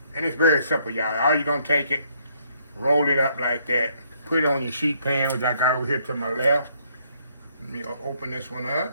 And it's very simple, y'all. All you're gonna take it, roll it up like that, put it on your sheet pan, which I got over here to my left. Let me open this one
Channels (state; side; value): inverted; both; correlation -0.69